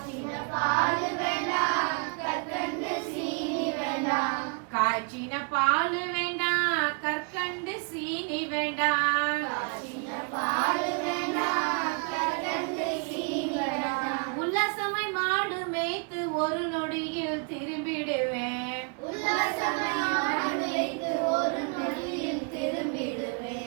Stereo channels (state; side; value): quieter; left; 37.5 dB